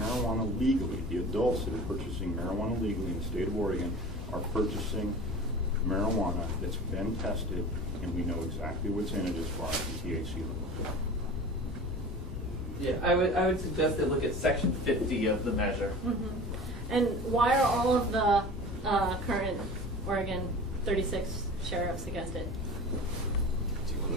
legally, the adults that are purchasing marijuana legally in the state of Oregon, are purchasing marijuana that's been tested and we know exactly what's in it as far as the THC levels. Yeah, I would suggest they look at Section 50 of the measure. Mm-hmm. And why are all of the current Oregon 36 sheriffs against it? Do you want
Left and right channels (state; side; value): normal; both; correlation 0.37